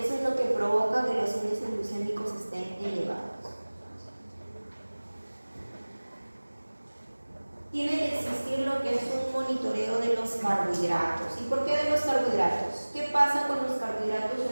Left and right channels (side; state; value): both; inverted; correlation -1.00